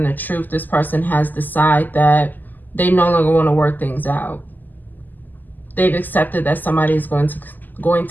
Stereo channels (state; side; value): late; right; 0.086 ms